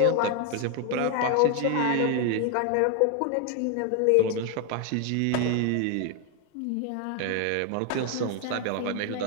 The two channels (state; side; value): different; both; correlation 0.00